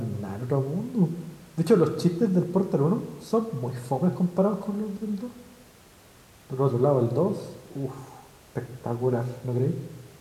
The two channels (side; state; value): both; identical; correlation 1.00